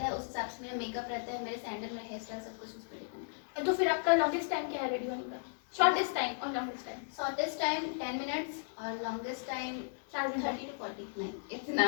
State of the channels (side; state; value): right; silent; digital silence